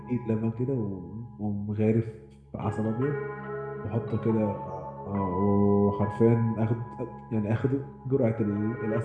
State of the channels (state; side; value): identical; both; correlation 1.00